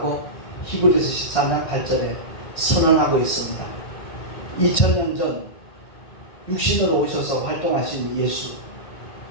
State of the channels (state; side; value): late; right; 1.6 ms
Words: 히브리서 13장 8절에 선언하고 있습니다. 2000년 전 육신으로 오셔서 활동하신 예수